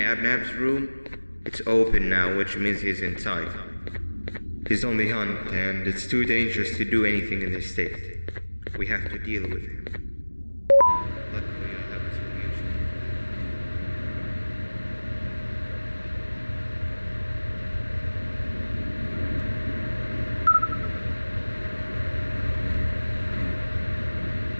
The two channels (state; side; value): inverted; both; correlation -1.00